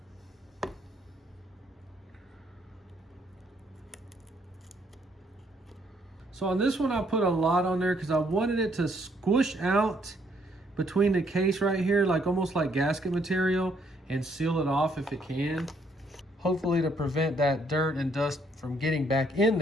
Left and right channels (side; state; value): both; normal; correlation 0.69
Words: So on this one, I put a lot on there because I wanted it to squish out between the case right here, like almost like gasket material, and seal it off if it can. Hopefully to prevent that dirt and dust from getting back in